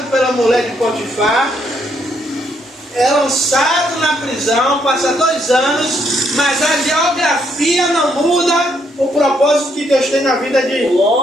pela mulher de Potifar, é lançado na prisão, passa 2 anos, mas a geografia não muda o propósito que Deus tem na vida de...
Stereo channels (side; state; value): both; normal; correlation 0.73